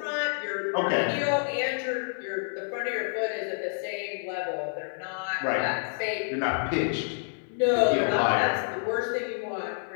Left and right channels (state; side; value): silent; right; 59 dB below the other